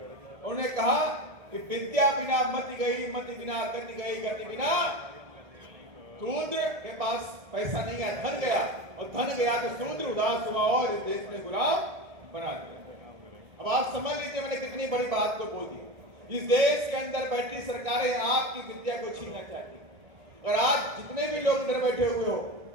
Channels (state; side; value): late; left; 1.6 ms